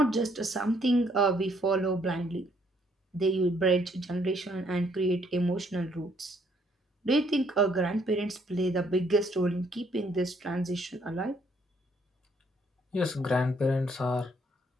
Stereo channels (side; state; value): both; normal; correlation 0.68